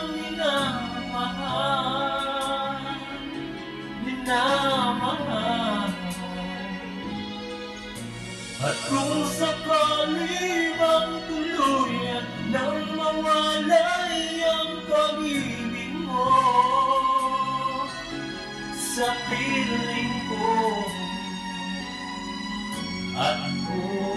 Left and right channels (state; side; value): identical; both; correlation 1.00